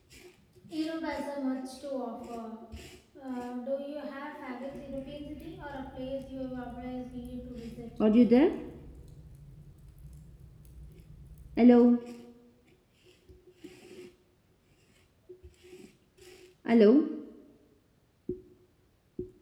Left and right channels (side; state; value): both; identical; correlation 1.00